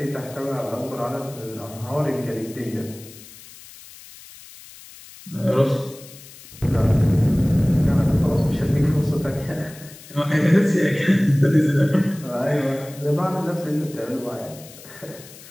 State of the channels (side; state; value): left; noise; hiss, 19 dB below the sound